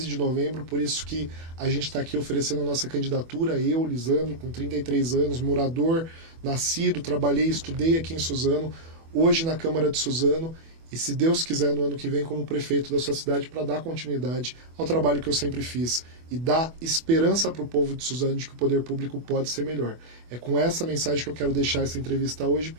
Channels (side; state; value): left; late; 24 ms